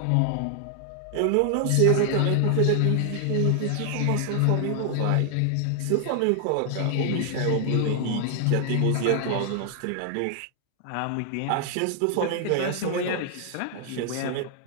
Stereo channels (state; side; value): different; both; correlation 0.00